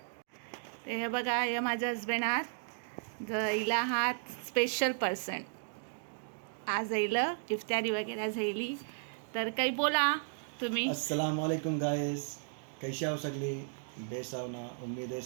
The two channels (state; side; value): silent; left; digital silence